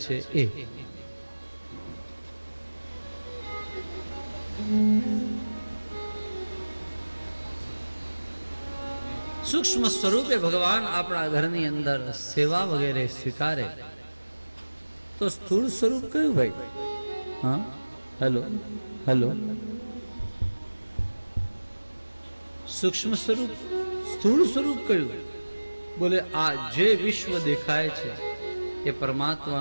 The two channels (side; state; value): both; inverted; correlation -1.00